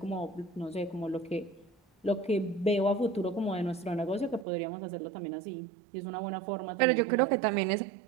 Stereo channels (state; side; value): drops out; left; at 4.5 s